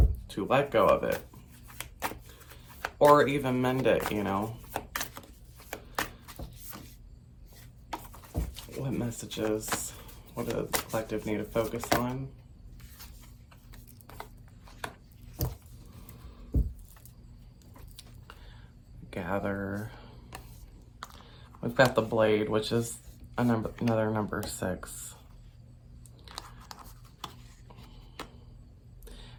let go of it or even mend it, you know. What messages, what does the collective need to focus on? Gather. We've got the blade, which is another number 6.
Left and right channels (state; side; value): identical; both; correlation 1.00